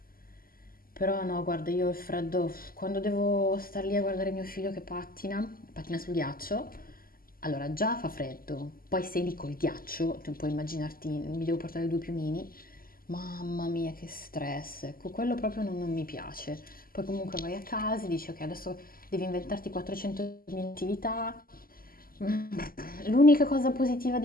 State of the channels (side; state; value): right; late; 0.42 ms